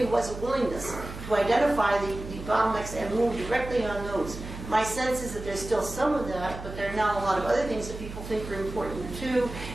was a willingness to identify the bottlenecks and move directly on those. My sense is that there's still some of that, but there are now a lot of other things that people think are important too.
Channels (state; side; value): noise; right; hum, 10 dB below the sound